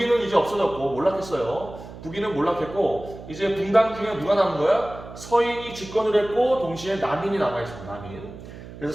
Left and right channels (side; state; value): right; noise; hum, 14 dB below the sound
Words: 이제 없어졌고 몰락했어요. 북인은 몰락했고 이제 분당 중에 누가 남은 거야? 서인이 집권을 했고 동시에 남인이 남아있습니다. 남인.